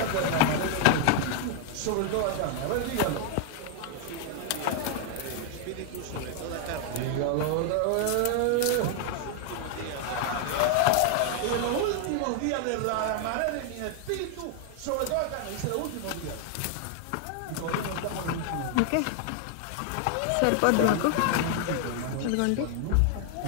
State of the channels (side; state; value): both; different; correlation 0.00